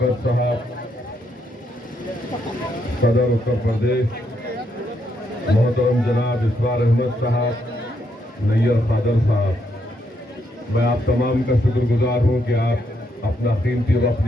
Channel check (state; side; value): normal; both; correlation 0.77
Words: साहब, सदर उत्तर प्रदेश मोहतरम जनाब इसरार अहमद साहब, नैयर खादर साहब, मैं आप तमाम का शुक्रगुजार हूँ कि आप अपना कीमती वक्त